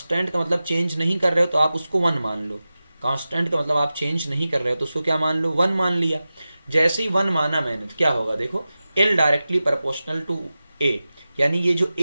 का मतलब चेंज नहीं कर रहे हो तो आप उसको 1 मान लो। कांस्टेंट का मतलब आप चेंज नहीं कर रहे हो तो उसको क्या मान लो, 1 मान लिया। जैसे ही 1 माना मैंने तो क्या होगा, देखो L directly proportional to A, यानी ये जो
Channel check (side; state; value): both; inverted; correlation -0.95